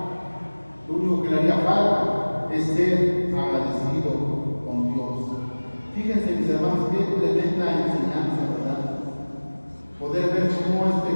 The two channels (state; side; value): inverted; both; correlation -1.00